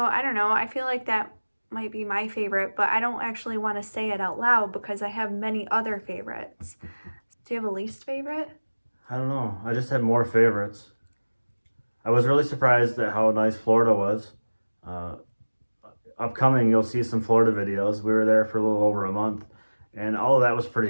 I don't know, I feel like that might be my favorite, but I don't actually want to say it out loud because I have many other favorites. Do you have a least favorite? I don't know. I just had more favorites. I was really surprised at how nice Florida was. Upcoming, you'll see some Florida videos. We were there for a little over a month, and all of that was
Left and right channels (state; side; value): inverted; both; correlation -1.00